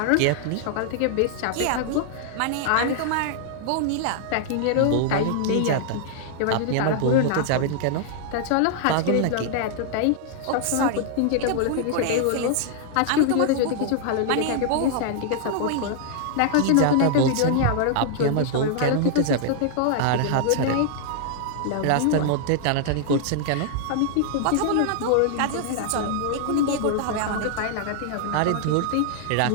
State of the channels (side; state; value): both; different; correlation -0.01